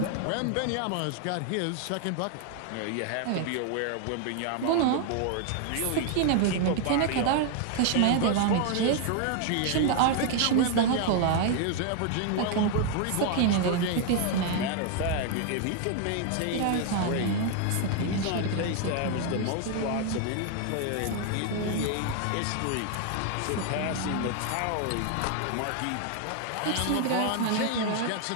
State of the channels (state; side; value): different; both; correlation 0.00